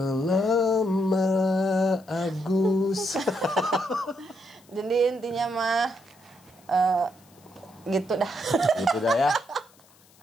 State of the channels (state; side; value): noise; left; hiss, 29 dB below the sound